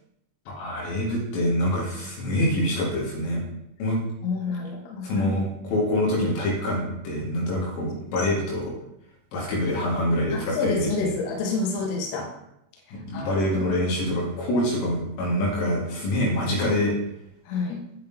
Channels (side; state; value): right; late; 21 ms